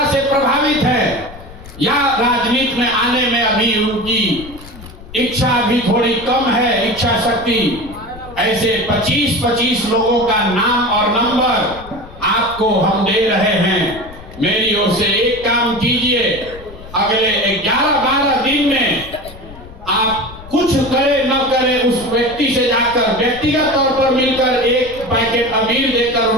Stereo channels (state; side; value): noise; left; rumble, 17 dB below the sound